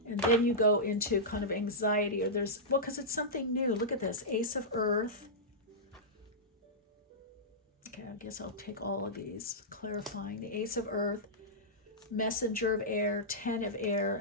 And then you go into kind of anxiety, or because it's something new. Look at this, Ace of Earth. Okay, I guess I'll take all of these, clarifying. The Ace of Earth, Messenger of Air, 10 of Air,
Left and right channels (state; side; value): normal; both; correlation -0.13